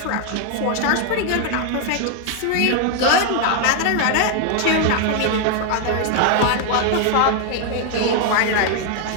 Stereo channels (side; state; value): both; different; correlation 0.01